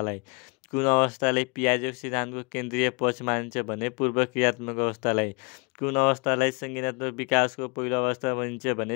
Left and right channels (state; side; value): quieter; right; 31.7 dB